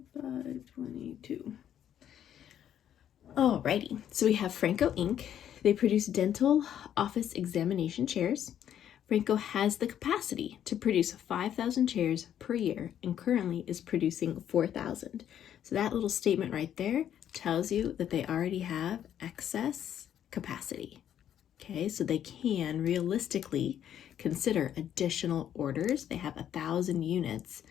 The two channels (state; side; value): quieter; right; 10.1 dB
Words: 522. Alrighty, so we have Franco Inc. They produce dental office examination chairs. Franco has the capacity to produce 5,000 chairs per year and currently is producing 4,000. So that little statement right there tells you that they already have excess capacity. Okay, so they can realistically consider additional orders. They have 1,000 units